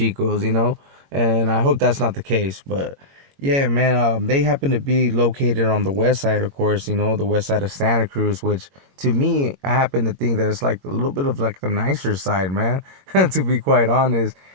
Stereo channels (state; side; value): late; left; 22 ms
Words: And I hope that's not the case. But yeah, man, they happen to be located on the west side, of course, the west side of Santa Cruz, which to me, I happen to think that it's like a little bit of like the nicer side, man, to be quite honest.